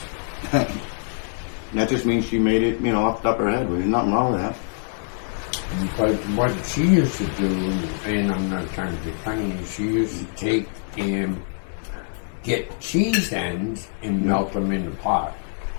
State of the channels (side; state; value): right; silent; 63 dB below the other